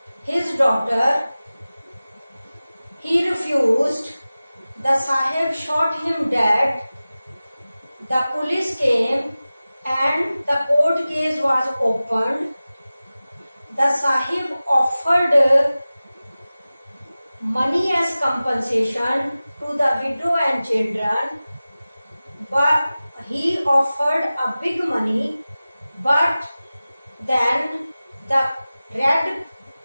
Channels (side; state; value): both; inverted; correlation -0.96